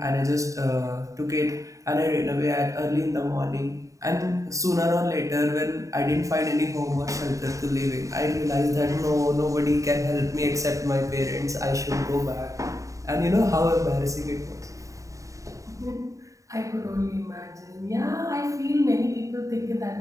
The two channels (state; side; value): late; left; 0.16 ms